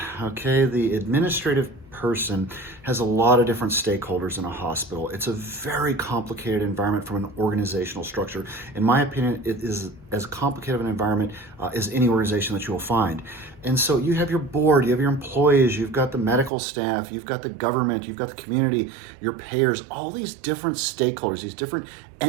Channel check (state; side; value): drops out; left; at 16.5 s